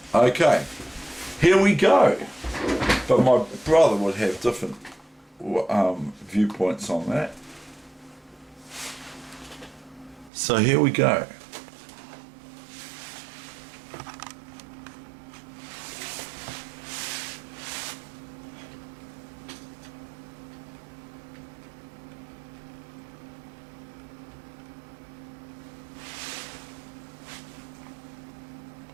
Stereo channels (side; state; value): left; drops out; at 10.3 s